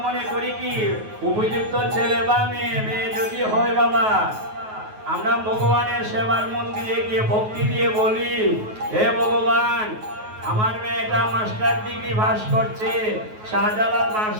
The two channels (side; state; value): left; late; 9.4 ms